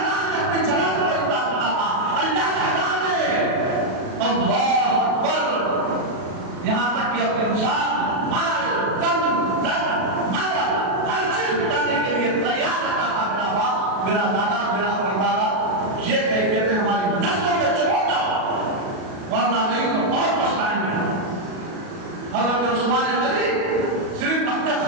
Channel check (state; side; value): late; left; 37 ms